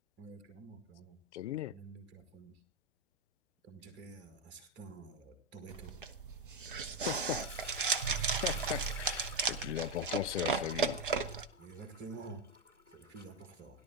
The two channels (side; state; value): both; normal; correlation 0.09